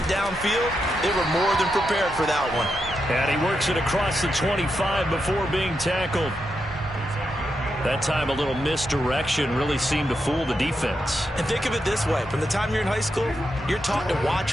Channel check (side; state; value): both; normal; correlation 0.85